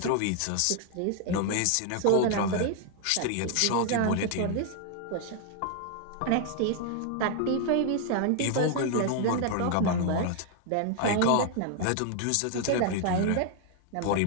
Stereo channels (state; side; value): different; both; correlation 0.00